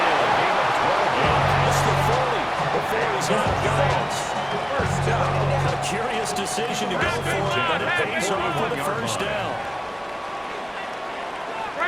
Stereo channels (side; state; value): both; identical; correlation 1.00